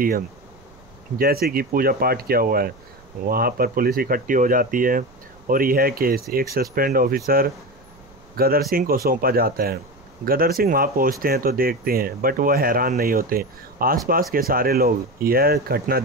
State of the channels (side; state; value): right; noise; rumble, 27 dB below the sound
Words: है, जैसे कि पूजा पाठ किया हुआ है। वहाँ पर पुलिस इकट्ठी हो जाती है और यह केस एक सस्पेंड ऑफिसर गदर सिंह को सौंपा जाता है। गदर सिंह वहाँ पहुँचते हैं तो देखते हैं, बट वह हैरान नहीं होते। आसपास के सारे लोग यह घटना